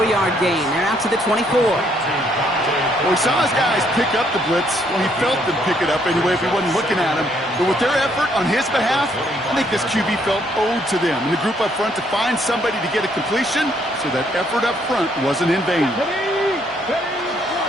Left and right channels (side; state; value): both; normal; correlation 0.69